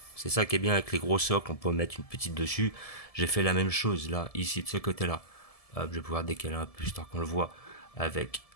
C'est ça qui est bien avec les gros socles, on peut mettre une petite dessus. J'ai fait la même chose là, ici de ce côté-là. Hop, je vais pouvoir décaler un peu histoire qu'on le voit avec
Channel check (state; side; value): late; right; 1.7 ms